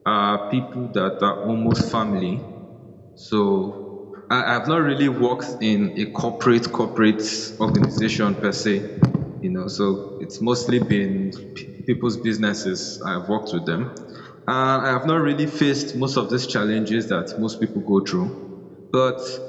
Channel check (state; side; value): identical; both; correlation 1.00